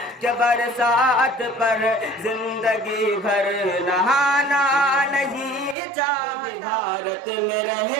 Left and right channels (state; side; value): drops out; left; at 5.8 s